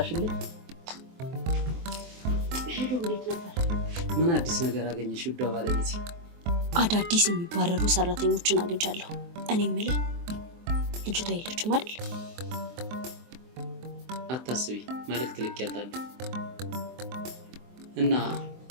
ሄሎ እንዴት ነበር? ምን አዲስ ነገር አገኘሽ ውዷ ባለቤት? አዳዲስ የሚባረሩ ሰራተኞችን አግኝቻለሁ። እኔ የምልህ ልጅቷ የለችም አይደል? አታስቢ፣ መልእክት ልኬያታለሁ። እና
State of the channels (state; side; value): late; left; 23 ms